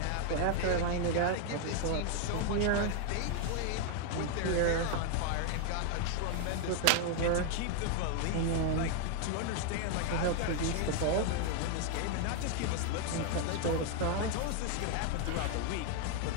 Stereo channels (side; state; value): both; different; correlation 0.00